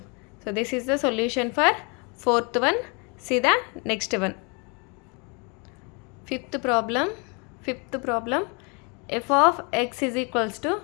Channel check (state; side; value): quieter; right; 32.4 dB